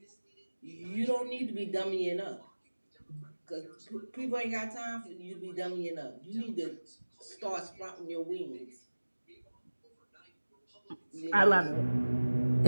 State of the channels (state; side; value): inverted; both; correlation -1.00